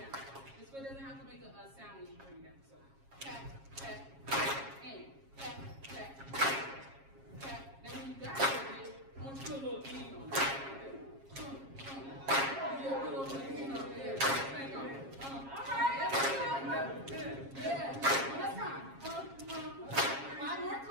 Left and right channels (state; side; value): late; left; 7.4 ms